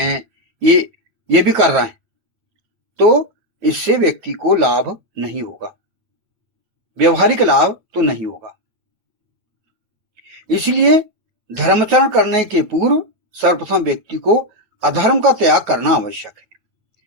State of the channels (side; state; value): left; late; 9.3 ms